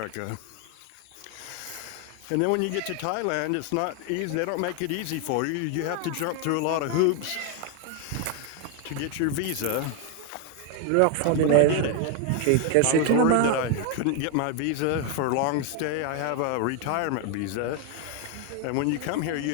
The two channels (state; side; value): different; both; correlation 0.01